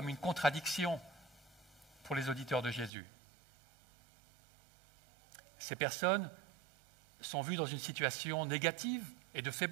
une contradiction pour les auditeurs de Jésus. Ces personnes sont vues dans une situation négative et de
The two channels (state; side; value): drops out; left; at 2.9 s